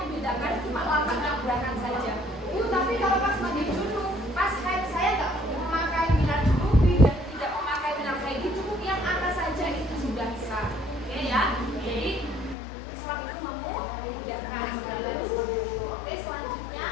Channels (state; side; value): drops out; right; at 12.6 s